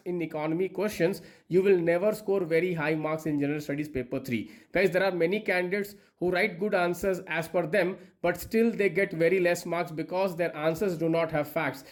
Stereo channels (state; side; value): identical; both; correlation 1.00